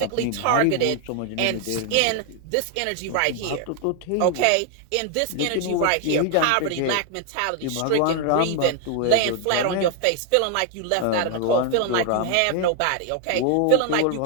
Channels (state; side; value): different; both; correlation 0.01